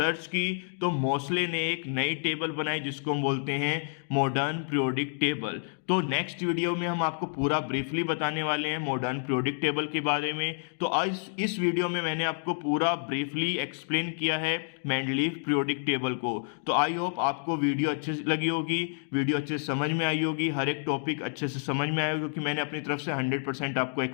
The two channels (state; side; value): silent; right; digital silence